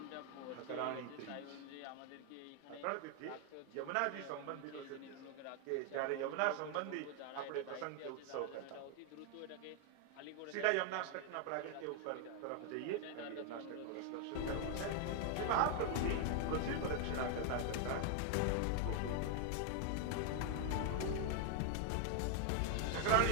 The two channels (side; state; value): both; different; correlation 0.00